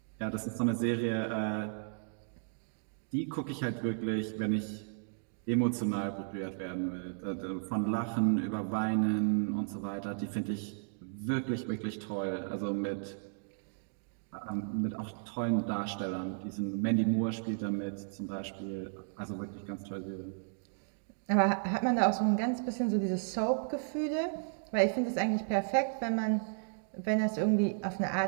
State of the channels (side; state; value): left; silent; digital silence